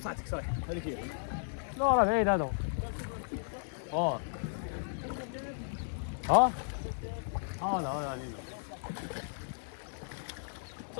صحتك صحيح. هذيك هي. لا راه بعيد هذا. هذا علينا.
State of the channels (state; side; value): silent; right; 54 dB below the other